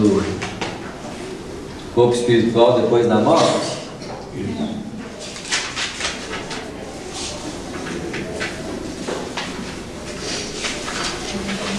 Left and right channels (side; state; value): both; identical; correlation 1.00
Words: Corpo Espiritual Depois da Morte.